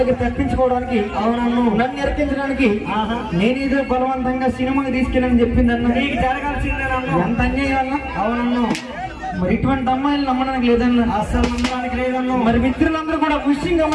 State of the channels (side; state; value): both; identical; correlation 1.00